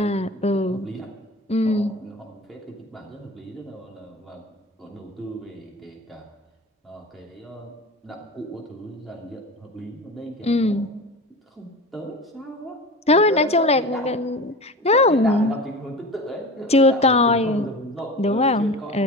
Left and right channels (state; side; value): normal; both; correlation 0.32